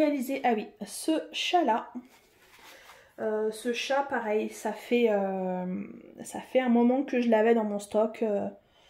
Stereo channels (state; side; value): identical; both; correlation 1.00